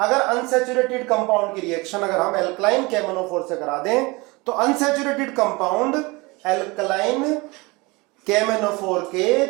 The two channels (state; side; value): quieter; left; 24.8 dB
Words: अनसैचुरेटेड कंपाउंड की रिएक्शन अगर हम एल्कलाइन KMnO4 से करा दें तो अनसैचुरेटेड कंपाउंड एल्कलाइन KMnO4 के